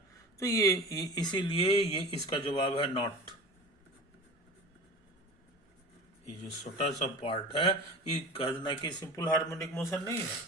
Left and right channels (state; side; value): normal; both; correlation 0.35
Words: तो ये इसीलिए ये इसका जवाब है नॉट। ये जो छोटा सा पार्ट है ये कहना कि सिंपल हार्मोनिक मोशन नहीं है।